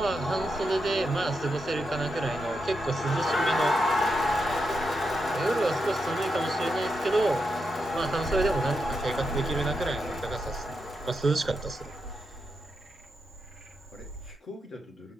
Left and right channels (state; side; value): normal; both; correlation 0.85